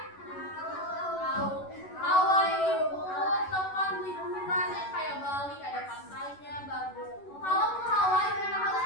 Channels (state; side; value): late; right; 11 ms